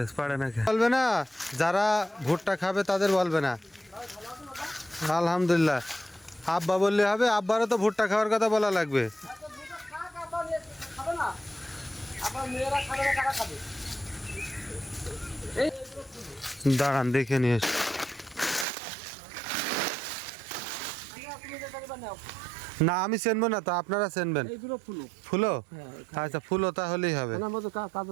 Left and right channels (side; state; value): left; drops out; at 18.7 s